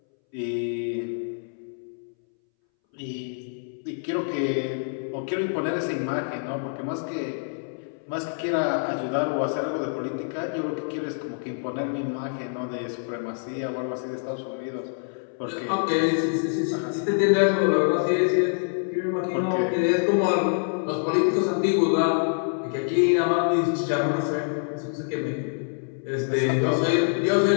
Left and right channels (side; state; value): right; silent; 61 dB below the other